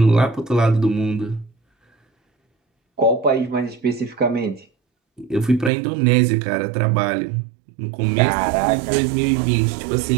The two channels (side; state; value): left; drops out; at 5.7 s